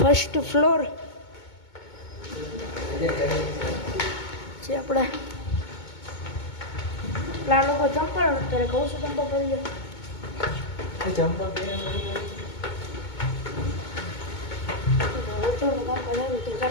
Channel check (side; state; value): right; late; 2.2 ms